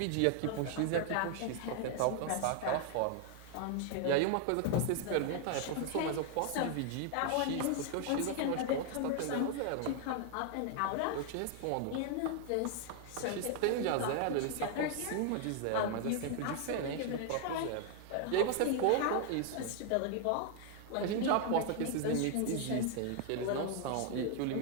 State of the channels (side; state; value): both; different; correlation 0.00